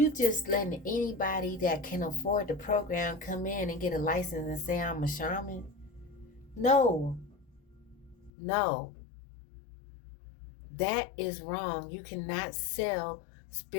just letting anybody that can afford the program come in and get a license and say I'm a shaman? No, that is wrong. You cannot sell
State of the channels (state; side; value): drops out; right; at 8.3 s